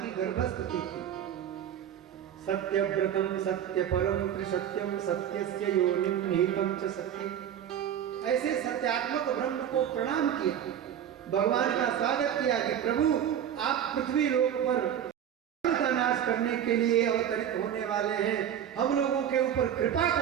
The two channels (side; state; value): left; quieter; 9.6 dB